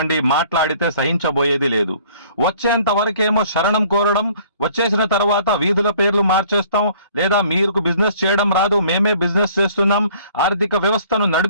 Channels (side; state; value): both; inverted; correlation -0.55